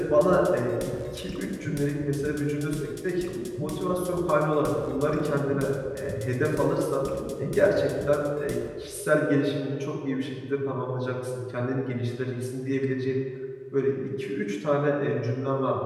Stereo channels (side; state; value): both; identical; correlation 1.00